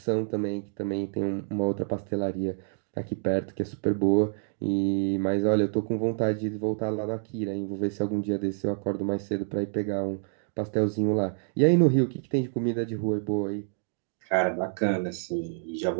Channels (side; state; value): left; silent; digital silence